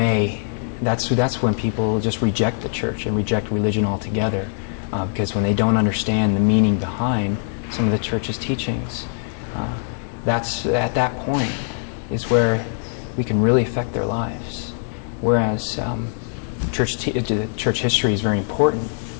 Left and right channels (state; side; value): silent; right; digital silence